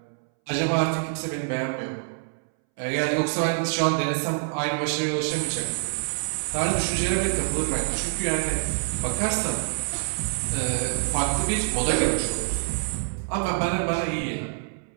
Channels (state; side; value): silent; left; 61 dB below the other